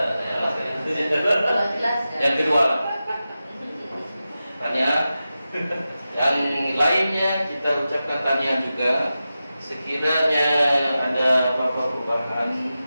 Yang kedua, tanya. Yang lainnya kita ucapkan tanya juga. Sekiranya ada apa-apa perubahan,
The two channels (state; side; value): inverted; both; correlation -0.93